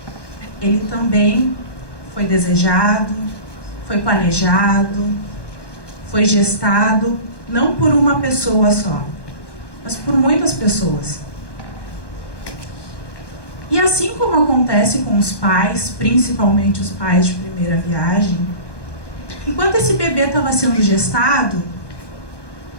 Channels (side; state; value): right; late; 1.1 ms